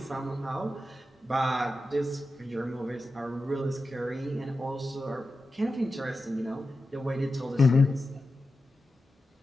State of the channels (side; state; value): both; normal; correlation 0.92